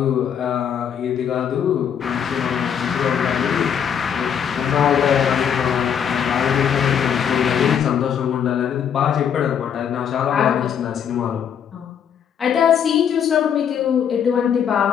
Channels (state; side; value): quieter; right; 8.2 dB